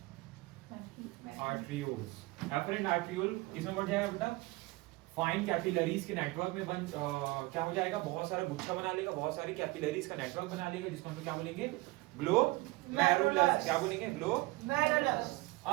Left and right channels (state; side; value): quieter; left; 22.4 dB